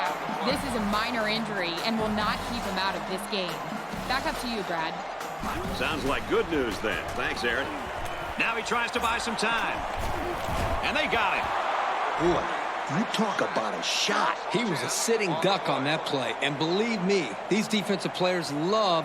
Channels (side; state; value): both; identical; correlation 1.00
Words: This is a minor injury and will not keep him out of this game. Back up to you, Brad. Sounds like good news then. Thanks, Aaron. Now he tries to buy some time. And they got him. Boy, you talk about a shot. He was a sitting duck on that play. And believe me, these defensive players